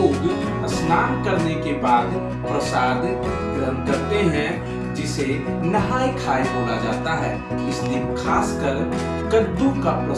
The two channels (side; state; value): both; identical; correlation 1.00